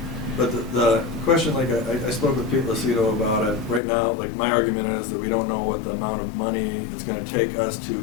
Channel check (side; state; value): right; drops out; at 3.8 s